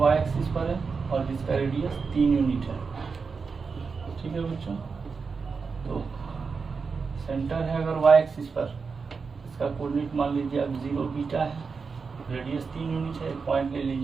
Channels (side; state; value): left; quieter; 5.1 dB